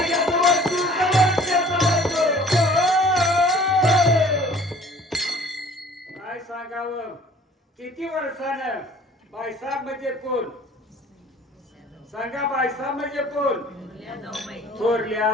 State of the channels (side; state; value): both; normal; correlation 0.51